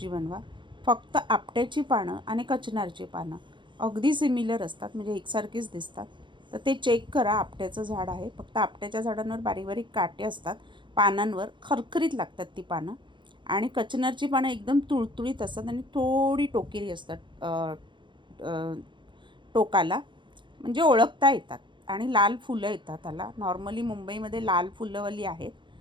बनवा. फक्त आपट्याची पानं आणि कचनारची पानं अगदी सिमिलर असतात, म्हणजे एकसारखीच दिसतात. तर ते चेक करा. आपट्याचं झाड आहे. फक्त आपट्याच्या झाडांवर बारीक बारीक काटे असतात. पानांवर खरखरीत लागतात ती पानं. आणि कचनारची पानं एकदम तुळतुळीत असतात आणि थोडी टोकेरी असतात टोकाला, म्हणजे ओळखता येतात. आणि लाल फुलं येतात त्याला. नॉर्मली मुंबईमध्ये लाल फुलंवाली आहेत.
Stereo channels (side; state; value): left; late; 0.23 ms